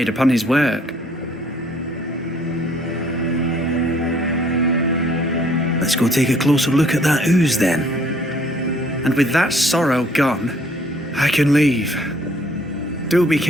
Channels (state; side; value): normal; both; correlation 0.60